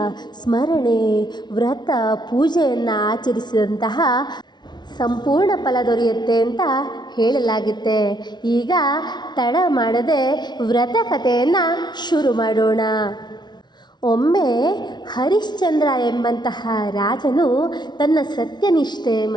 ಸ್ಮರಣೆ, ವ್ರತ, ಪೂಜೆಯನ್ನು ಆಚರಿಸಿದಂತಹ ಸಂಪೂರ್ಣ ಫಲ ದೊರೆಯುತ್ತೆ ಅಂತ ಹೇಳಲಾಗುತ್ತೆ. ಈಗ ತಡ ಮಾಡದೆ ವ್ರತಕಥೆಯನ್ನು ಶುರು ಮಾಡೋಣ. ಒಮ್ಮೆ ಹರಿಶ್ಚಂದ್ರ ಎಂಬಂತಹ ರಾಜನು ತನ್ನ ಸತ್ಯನಿಷ್ಠೆ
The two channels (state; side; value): late; right; 0.20 ms